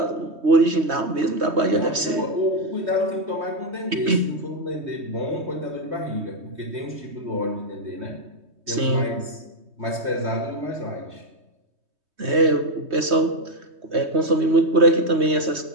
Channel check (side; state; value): left; late; 3.2 ms